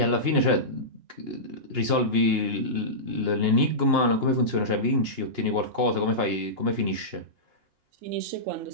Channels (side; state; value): left; late; 2.8 ms